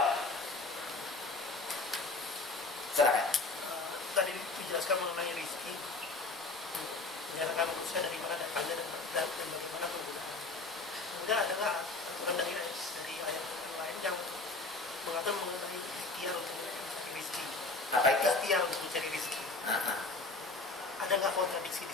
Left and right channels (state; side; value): quieter; right; 3.5 dB